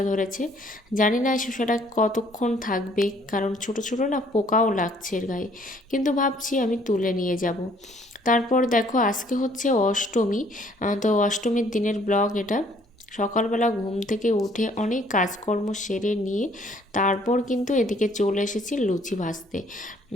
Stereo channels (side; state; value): both; normal; correlation 0.61